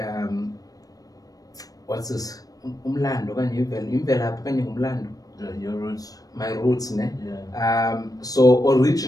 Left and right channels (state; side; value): late; right; 0.18 ms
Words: what's this? Umlando, your roots. My roots, ne? So